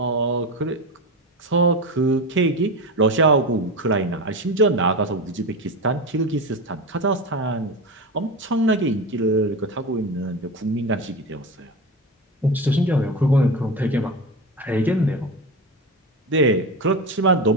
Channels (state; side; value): normal; both; correlation 0.22